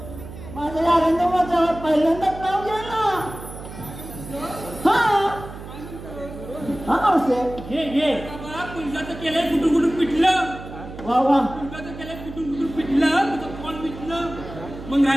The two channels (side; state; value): right; noise; hum, 13 dB below the sound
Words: माझ्या या रंगमाच्या पहिल्यांदाच नाव घ्या ना. हा मावसे घे पुलिसाचं केलंय कुठून पिटलं. वा वा पुलिसाचं केलंय कुठून पिटलं तुझं कोण पिटलं मग